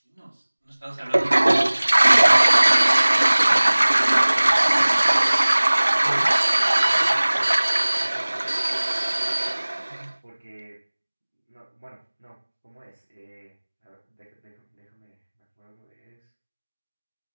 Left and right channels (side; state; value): both; inverted; correlation -1.00